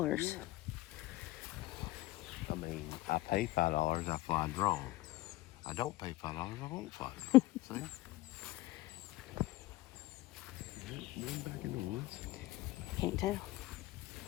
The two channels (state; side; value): quieter; right; 17.7 dB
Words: Yeah. I mean, I pay $5, I fly drone. I don't pay $5, I won't fly drone. See? Going back in the woods? Can't tell.